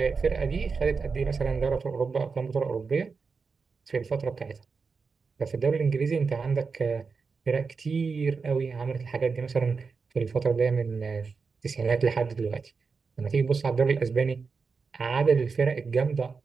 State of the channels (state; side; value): quieter; left; 5.0 dB